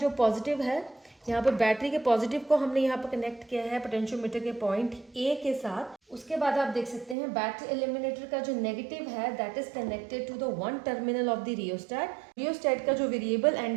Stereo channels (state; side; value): drops out; left; at 7.2 s